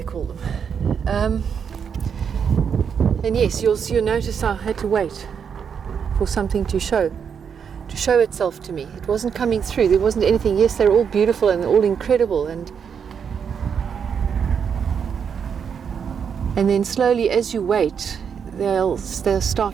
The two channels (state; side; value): quieter; left; 7.1 dB